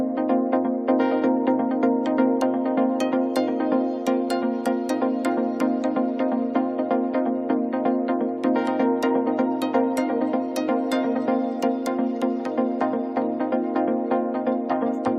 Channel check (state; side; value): identical; both; correlation 1.00